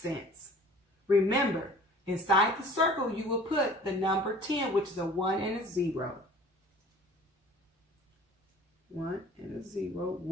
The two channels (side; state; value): both; normal; correlation 0.47